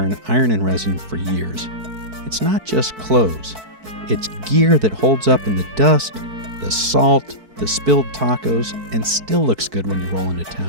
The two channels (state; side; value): late; left; 4.6 ms